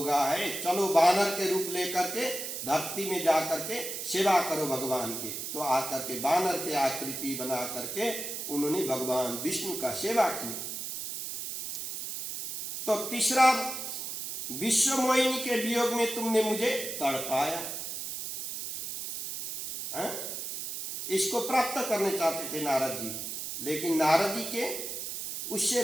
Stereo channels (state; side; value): noise; right; hiss, 6 dB below the sound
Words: है, चलो बानर के रूप लेकर के धरती में जाकर के सेवा करो भगवान के। तो आकर के बानर के आकृति बना करके उन्होंने भगवान विष्णु का सेवा किया। तो तीसरा, विश्व मोहिनी के वियोग में तुमने मुझे तड़पाया। इसको प्राप्त करने चाहते थे नारद जी, लेकिन नारद जी के उससे